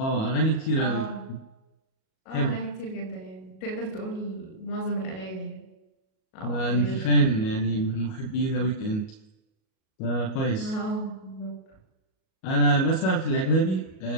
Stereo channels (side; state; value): right; late; 37 ms